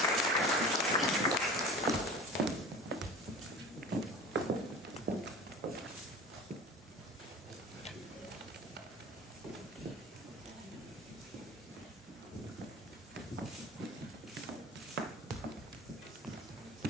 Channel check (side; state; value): both; normal; correlation 0.38